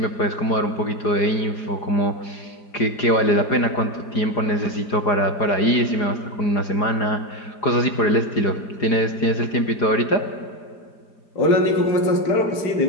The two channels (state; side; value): late; right; 4.9 ms